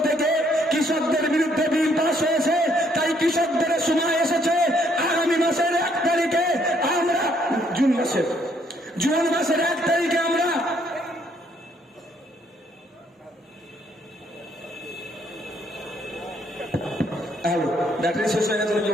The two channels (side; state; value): both; normal; correlation 0.68